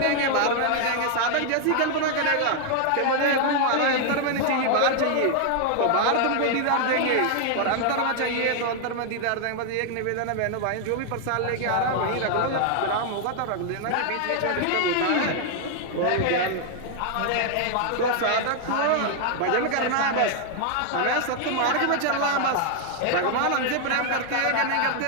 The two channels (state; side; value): different; both; correlation 0.00